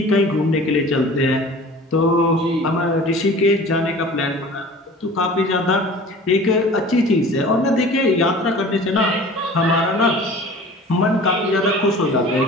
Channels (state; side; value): normal; both; correlation 0.43